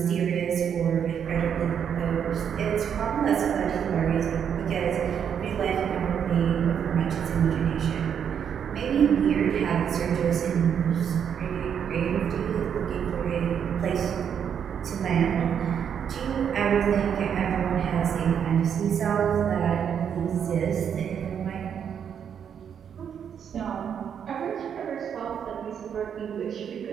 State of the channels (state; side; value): quieter; left; 8.1 dB